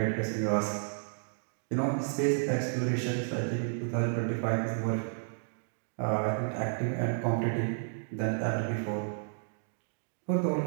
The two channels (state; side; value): silent; left; digital silence